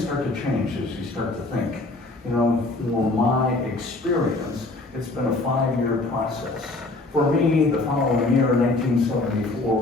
start to change as you start to think. For my experience, it's been a 5-year process. For me, the following year, 1974,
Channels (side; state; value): right; quieter; 3.1 dB